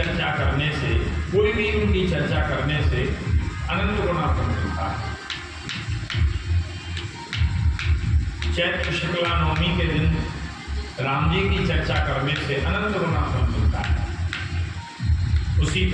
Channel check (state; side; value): identical; both; correlation 1.00